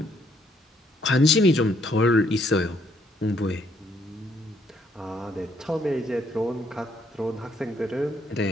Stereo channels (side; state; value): both; normal; correlation 0.70